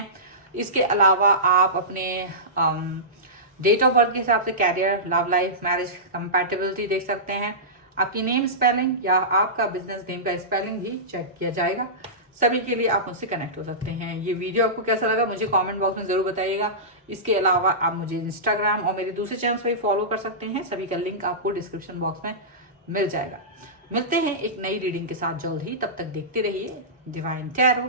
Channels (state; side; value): normal; both; correlation -0.19